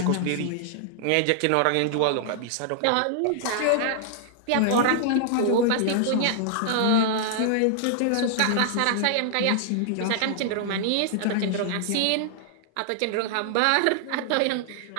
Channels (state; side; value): different; both; correlation -0.01